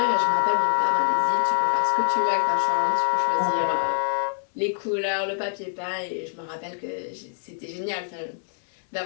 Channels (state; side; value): silent; right; 62 dB below the other